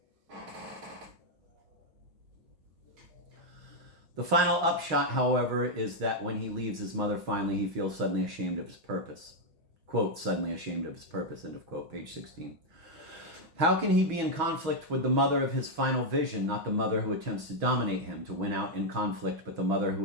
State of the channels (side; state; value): left; late; 6.2 ms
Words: The final upshot, however, is that when he leaves his mother finally, he feels suddenly ashamed of his purpose. Quote, suddenly ashamed of his purpose, end of quote, page 16. How can he be in conflict with the mother of his final vision, not the mother who attempts to dominate him, to win out in conflict, but the mother who